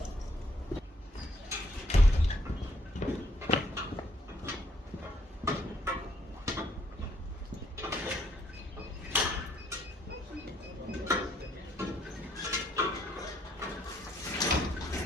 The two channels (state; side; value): normal; both; correlation 0.68